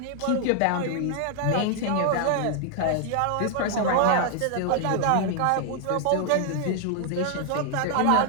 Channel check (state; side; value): different; both; correlation 0.00